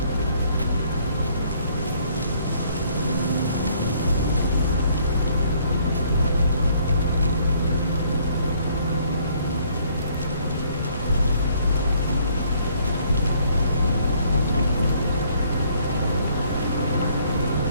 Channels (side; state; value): both; inverted; correlation -0.63